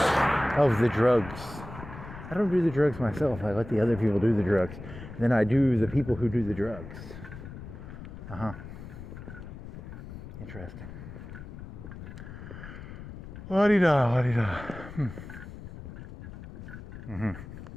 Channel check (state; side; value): noise; left; rumble, 12 dB below the sound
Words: of the drugs. I don't do the drugs myself. I let the other people do the drugs. Then I do the people who do the drugs. Interesting. La-di-da, la-di-da.